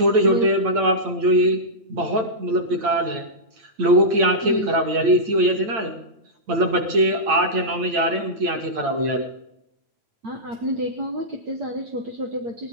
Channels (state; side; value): late; left; 8.8 ms